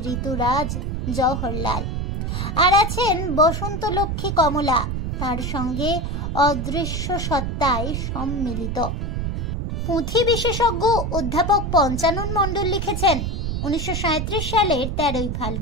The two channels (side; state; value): right; noise; rumble, 2 dB below the sound